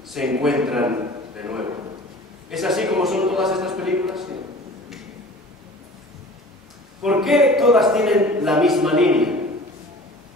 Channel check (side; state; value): both; normal; correlation 0.43